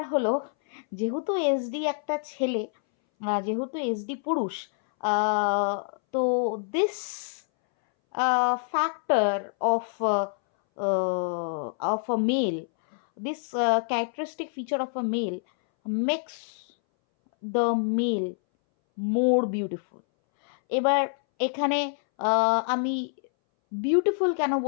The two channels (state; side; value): silent; right; 60 dB below the other